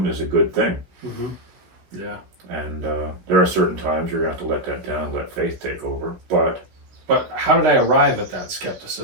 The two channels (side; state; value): left; late; 16 ms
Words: is a good thing. Mm-hmm. Yeah. And there are certain times you're going to have to let that down, let faith take over. But how did I arrive at that